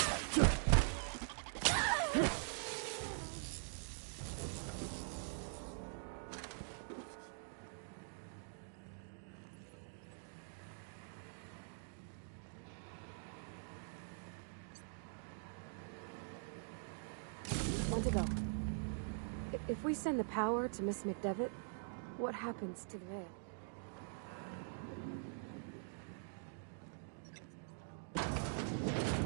If we send the power to Miss McDevitt, what happens to the Veil?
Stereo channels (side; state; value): left; silent; digital silence